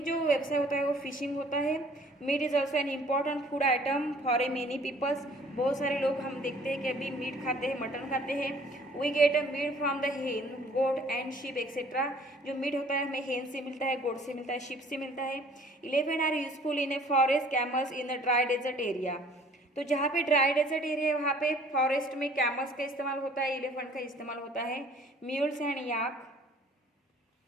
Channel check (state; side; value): normal; both; correlation 0.54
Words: जो व्यवसाय होता है वो फिशिंग होता है। Meat is also an important food item for a many peoples, बहुत सारे लोग हम देखते हैं कि अभी मीट खाते हैं, मटन खाते हैं। We get a meat from the hen, goat and sheep etcetera, जो मीट होता है हमें हेन से मिलता है, गोट से मिलता है, शीप से मिलता है। Elephant are useful in a forest, camels in a dry desert area, तो जहाँ पे ड्राई डेजर्ट एरिया है वहाँ पे फॉरेस्ट में कैमल्स का इस्तेमाल होता है, एलिफेंट का इस्तेमाल होता है। Mules and yak